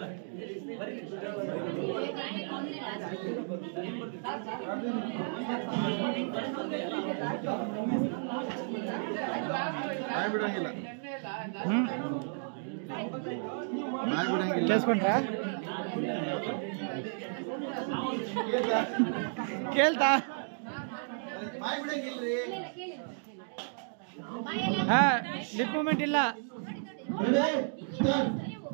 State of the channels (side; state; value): left; silent; digital silence